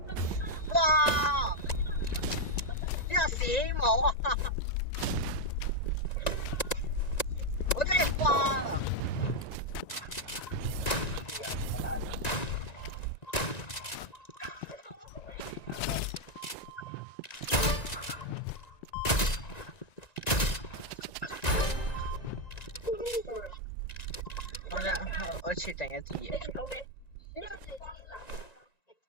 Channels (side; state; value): right; late; 1.9 ms